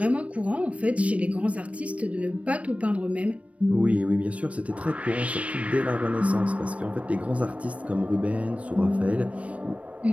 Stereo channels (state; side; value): late; left; 0.064 ms